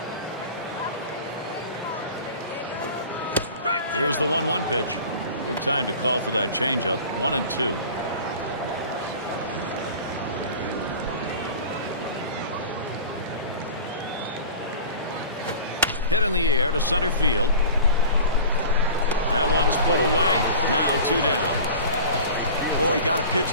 Here's the 1-1 pitch. Good time to call for that changeup. 1-2. Hit in the air to center field. That one's put away. Now 2 down. Oh, he got a pitch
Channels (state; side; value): inverted; both; correlation -0.39